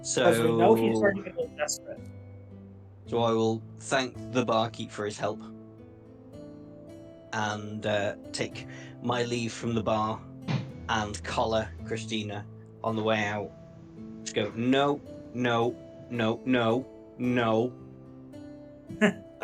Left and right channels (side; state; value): both; identical; correlation 1.00